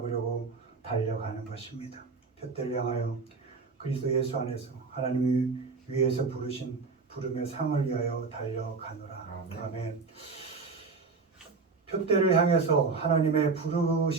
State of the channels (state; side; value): quieter; left; 4.5 dB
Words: 달려가는 것입니다. 푯대를 향하여 그리스도 예수 안에서 하나님이 위에서 부르신 부름의 상을 위하여 달려가노라. 아멘. 푯대를 향해서 하나님의